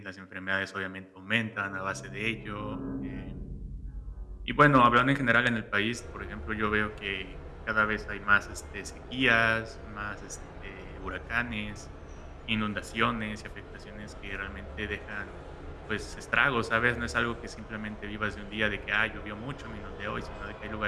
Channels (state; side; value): identical; both; correlation 1.00